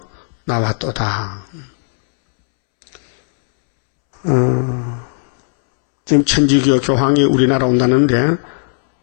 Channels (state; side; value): silent; right; 69 dB below the other